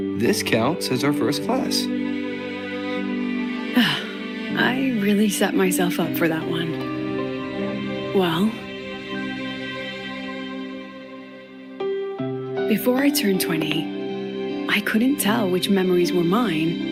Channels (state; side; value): identical; both; correlation 1.00